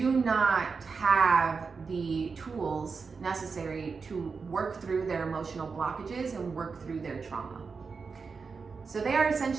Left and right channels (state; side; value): quieter; left; 5.0 dB